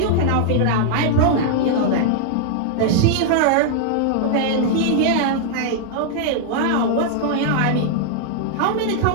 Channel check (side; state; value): both; different; correlation -0.01